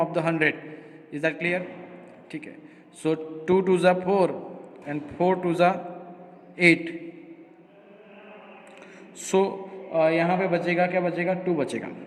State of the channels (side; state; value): both; identical; correlation 1.00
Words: of the 100। Is that clear? ठीक है। सो 2 2 ज़ा 4 एंड 4 2 ज़ा 8। सो यहाँ पे बचेगा क्या? बचेगा 2 बचेगा।